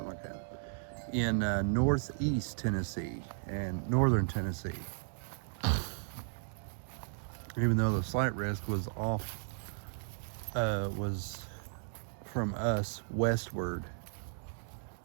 like that, in northeast Tennessee and northern Tennessee. Even though the slight risk was was from us westward,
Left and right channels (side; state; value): left; silent; digital silence